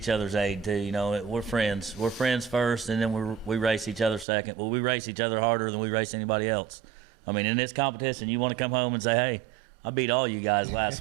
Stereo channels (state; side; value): drops out; left; at 4.2 s